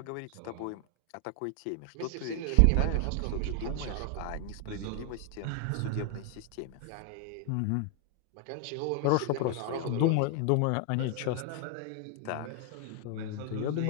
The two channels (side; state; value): both; different; correlation 0.00